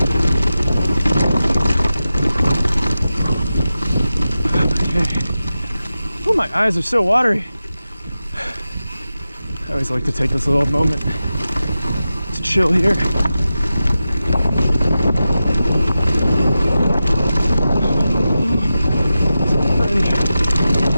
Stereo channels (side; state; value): both; inverted; correlation -0.92